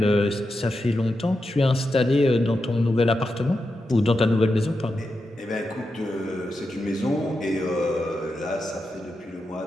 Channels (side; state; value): both; normal; correlation 0.88